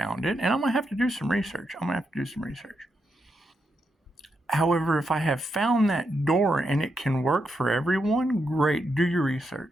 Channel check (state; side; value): normal; both; correlation 0.83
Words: it, and I'm going to have to do some research. However, if I have found that door and it can work for everyone, great. Do your